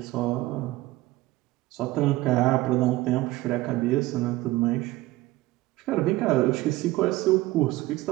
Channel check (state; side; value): quieter; left; 18.1 dB